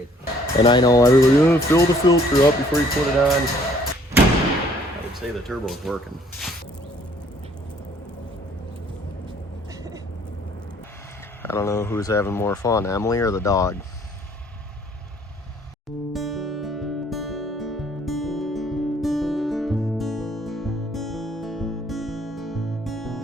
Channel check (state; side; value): normal; both; correlation 0.60